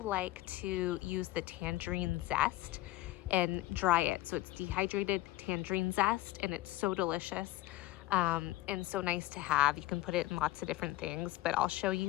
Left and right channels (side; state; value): right; quieter; 17.1 dB